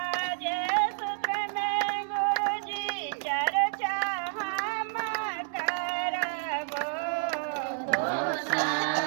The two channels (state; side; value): silent; left; 58 dB below the other